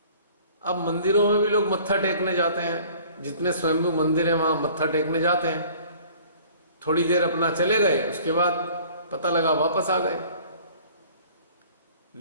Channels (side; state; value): both; inverted; correlation -0.51